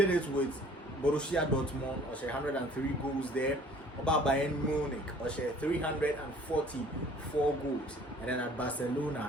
it with Borussia Dortmund, or 103 goals there. About Bayern Munich, or 344 goals, and then at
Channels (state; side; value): normal; both; correlation 0.53